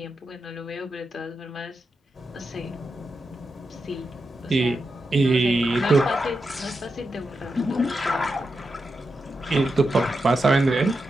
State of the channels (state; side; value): normal; both; correlation 0.88